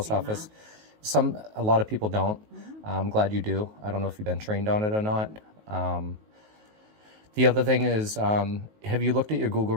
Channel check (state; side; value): late; left; 19 ms